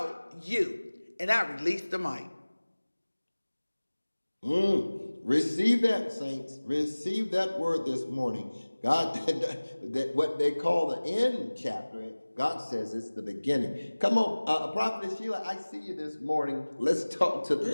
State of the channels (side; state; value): both; inverted; correlation -1.00